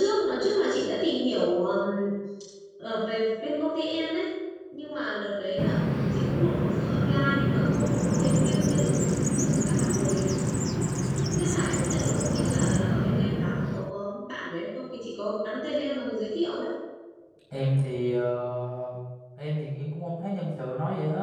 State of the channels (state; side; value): identical; both; correlation 1.00